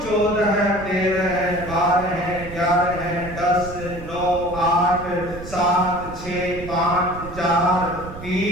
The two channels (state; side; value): noise; right; rumble, 12 dB below the sound